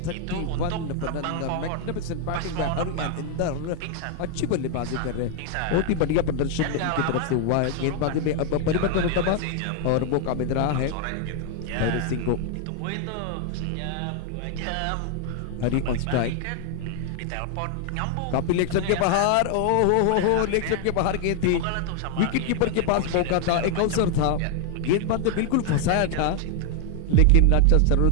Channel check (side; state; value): both; different; correlation 0.00